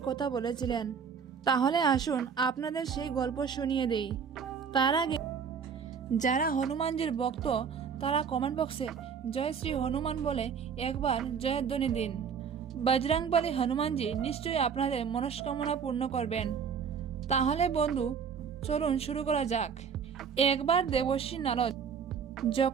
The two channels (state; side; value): quieter; left; 6.7 dB